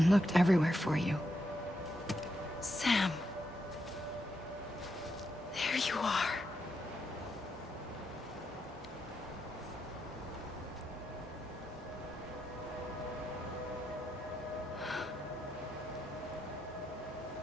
looked everywhere for you. Sam. There you are.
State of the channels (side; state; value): both; normal; correlation 0.82